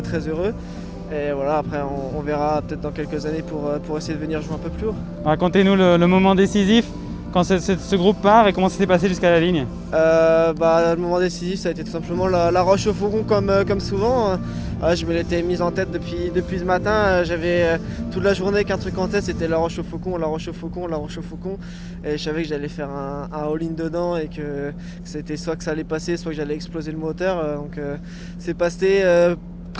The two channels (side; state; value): both; identical; correlation 1.00